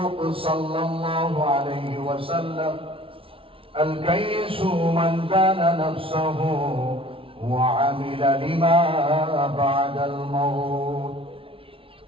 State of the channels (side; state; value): left; late; 0.26 ms